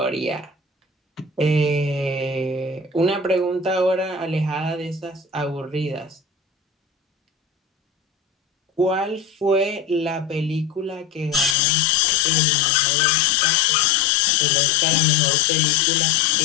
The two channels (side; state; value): right; drops out; at 11.6 s